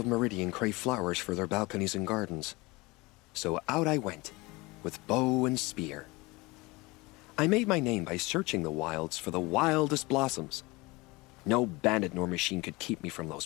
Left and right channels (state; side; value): quieter; right; 23.5 dB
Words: Meridian crave flowers for their balconies and gardens. So out I went, with bow and spear. I made my name by searching the wilds for the wildest blossoms. No bandit nor machine could keep me from those